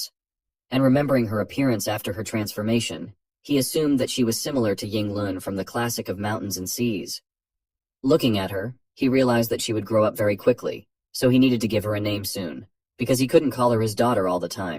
And remembering her appearance after her transformation, he assumed that she was similar to Ying Lun from the classic of Mountains and Seas. Looking at her, he realized that she would grow up very quickly, so he needed to give her a name soon, because he couldn't call her his daughter all the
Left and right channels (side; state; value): both; identical; correlation 1.00